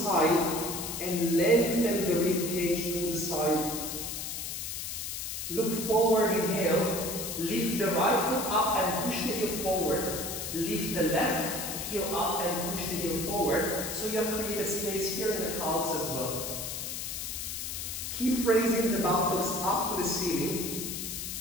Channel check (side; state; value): left; noise; hiss, 5 dB below the sound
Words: and lengthen the rib cage to the side. Look forward, inhale. Lift the right foot up and push the heel forward. Lift the left heel up and push the heel forward. So you have created space here in the calves as well. Keep raising the buttocks up to the ceiling.